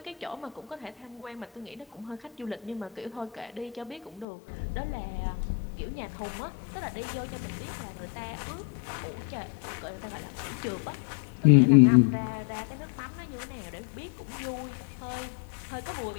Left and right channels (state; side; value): drops out; right; at 4.2 s